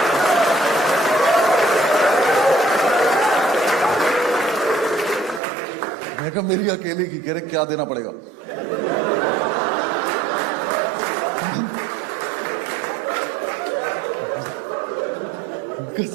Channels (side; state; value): left; drops out; at 5.4 s